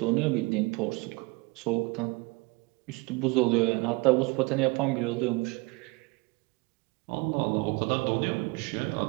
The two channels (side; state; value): left; quieter; 25.7 dB